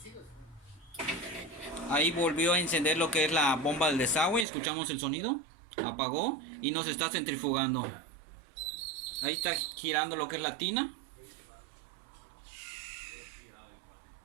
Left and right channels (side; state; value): left; drops out; at 4.5 s